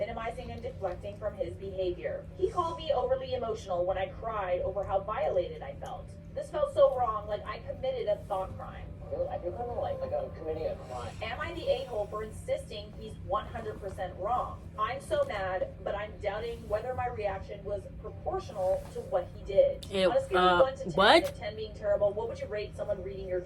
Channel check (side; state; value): both; identical; correlation 1.00